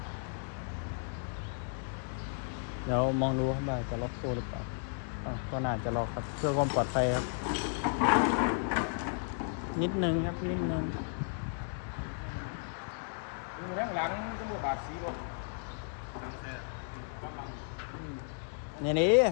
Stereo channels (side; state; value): right; silent; 55 dB below the other